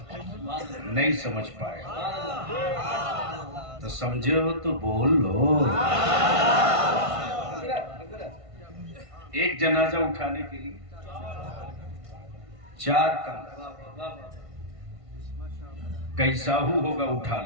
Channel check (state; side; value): late; left; 1.5 ms